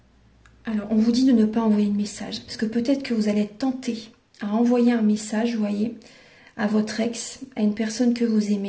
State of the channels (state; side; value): identical; both; correlation 1.00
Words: Alors, on vous dit de ne pas envoyer de message, parce que peut-être que vous allez être tenté à envoyer un message, vous voyez, à votre ex, à une personne que vous